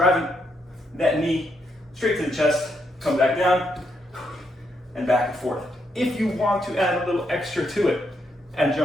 that knee straight to the chest, come back down, and back and forth. If you want to add a little extra to it, add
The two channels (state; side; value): normal; both; correlation 0.78